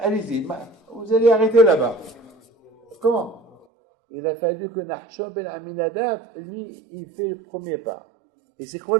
vous allez arrêter là-bas. Comment? Il a fallu que Nahshon ben Aminadab, lui, il fait le premier pas. Et c'est quoi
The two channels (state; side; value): drops out; left; at 3.6 s